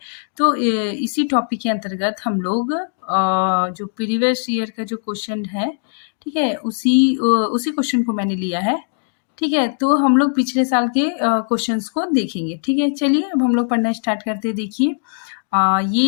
तो इसी टॉपिक के अंतर्गत हम लोग जो प्रीवियस ईयर का जो क्वेश्चन है, ठीक है, उसी क्वेश्चन को मैंने लिया है। ठीक है, तो हम लोग पिछले साल के क्वेश्चंस को देखेंगे। ठीक है, चलिए अब हम लोग पढ़ना स्टार्ट करते हैं। देखिए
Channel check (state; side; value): silent; right; 66 dB below the other